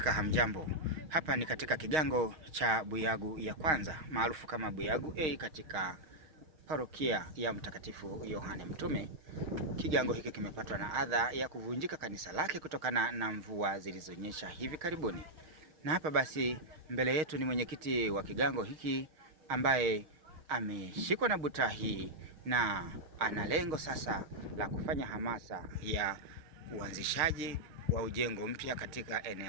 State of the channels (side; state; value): left; late; 6.4 ms